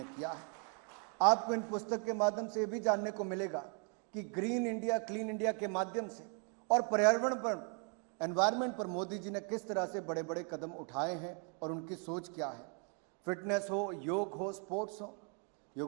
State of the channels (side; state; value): left; quieter; 39.5 dB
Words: किया है। आपको इन पुस्तक के माध्यम से भी जानने को मिलेगा कि ग्रीन इंडिया, क्लीन इंडिया के माध्यम से और पर्यावरण पर, एनवायरनमेंट पर मोदी जी ने किस तरह से बड़े बड़े कदम उठाए हैं और उनकी सोच क्या है। फिटनेस हो, योग हो, स्पोर्ट्स हो,